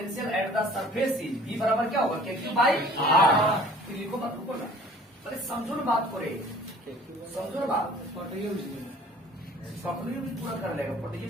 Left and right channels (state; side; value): normal; both; correlation 0.50